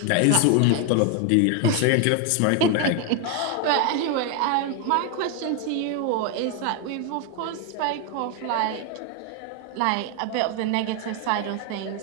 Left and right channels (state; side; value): different; both; correlation 0.01